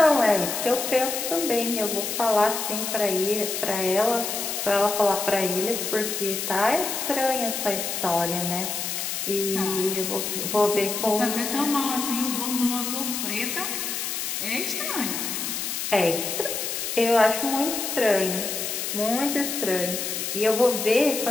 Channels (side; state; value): left; noise; hiss, 3 dB below the sound